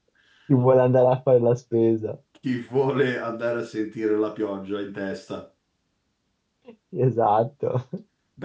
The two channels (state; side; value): identical; both; correlation 1.00